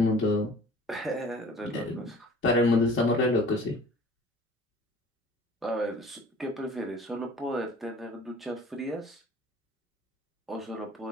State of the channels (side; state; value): both; normal; correlation 0.47